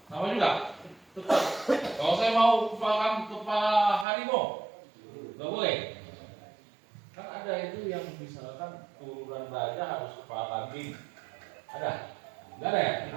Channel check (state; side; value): drops out; left; at 4.0 s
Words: sama juga. Tetap. Kalau saya mau kepala harimau, nggak boleh. Kan ada itu yang misalkan turunan raja harus kepala kambing. Ada? Enggak ada ya?